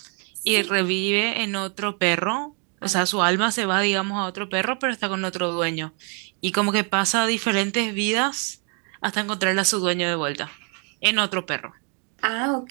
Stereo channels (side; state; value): left; quieter; 38.0 dB